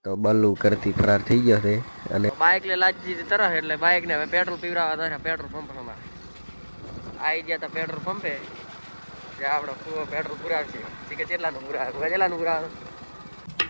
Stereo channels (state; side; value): inverted; both; correlation -1.00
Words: તો બલ્લુ કરતી ફરાર થઈ ગયો છે અને બાઇક લે લાજી દીધી તરફ એટલે બાઇક ને હવે પેટ્રોલ પીવડાવવા હતા પેટ્રોલ પંપ માં આવી ગયા હતા પેટ્રોલ પંપે. આપણે પેટ્રોલ પુરાવશે કે કેટલાનું પુરાવે કેટલાનું પુરાવે.